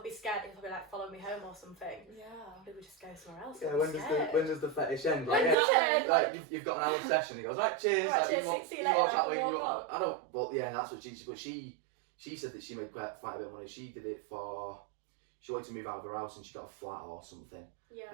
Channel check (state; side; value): drops out; left; at 5.6 s